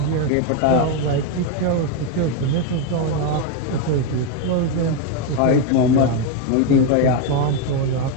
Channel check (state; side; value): different; both; correlation 0.02